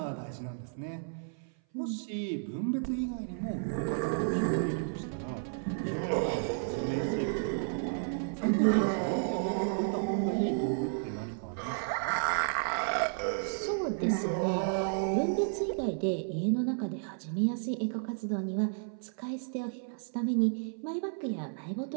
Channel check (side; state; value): left; silent; 56 dB below the other